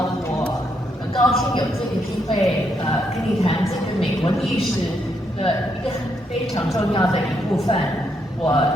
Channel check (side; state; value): both; normal; correlation 0.77